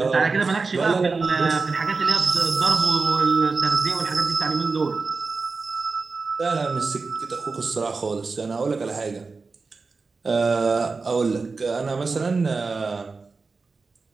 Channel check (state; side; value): quieter; left; 4.3 dB